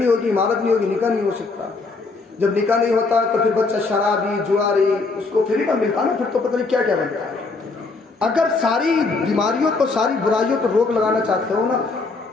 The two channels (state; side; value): quieter; right; 3.9 dB